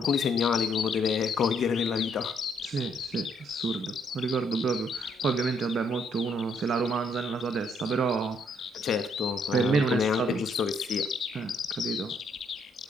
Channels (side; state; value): both; normal; correlation 0.70